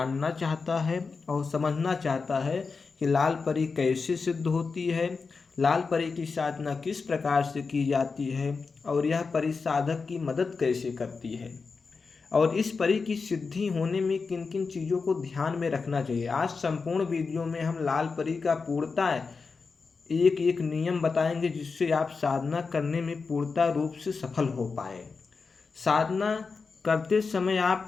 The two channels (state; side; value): quieter; right; 4.7 dB